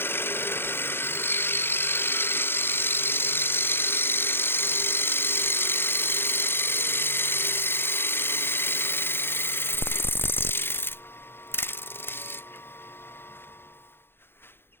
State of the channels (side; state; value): right; late; 0.11 ms